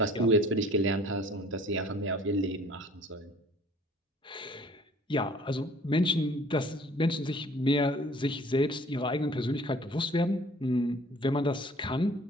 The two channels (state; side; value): normal; both; correlation 0.52